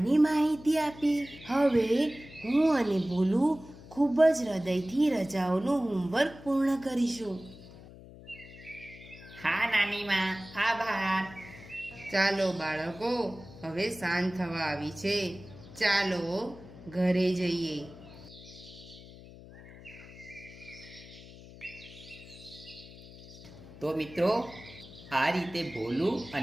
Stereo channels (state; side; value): noise; left; hum, 18 dB below the sound